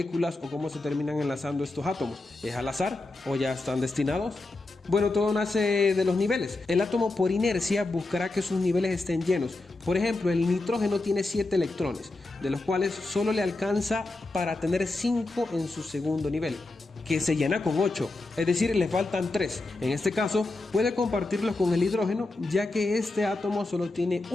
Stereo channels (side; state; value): right; quieter; 3.1 dB